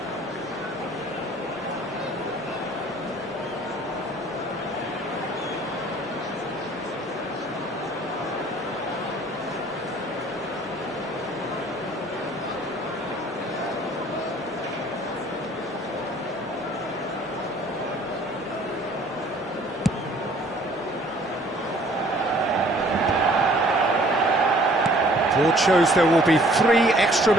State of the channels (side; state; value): both; normal; correlation 0.56